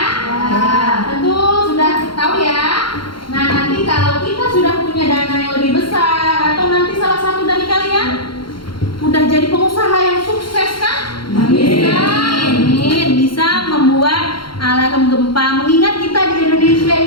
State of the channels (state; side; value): late; right; 0.73 ms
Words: Tentu sudah tahu ya. Nah, nanti kalau kita sudah punya dana yang lebih besar atau nanti salah satu dari kalian udah jadi pengusaha yang sukses kan? Bisa membuat alarm gempa. Mengingat kita di Indonesia